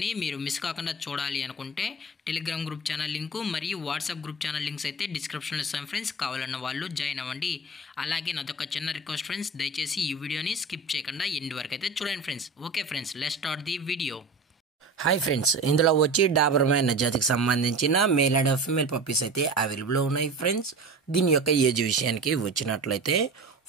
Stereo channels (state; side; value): quieter; left; 3.1 dB